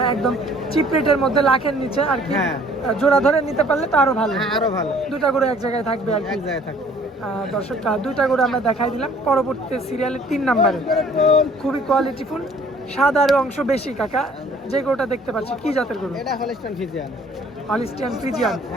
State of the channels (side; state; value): both; normal; correlation 0.56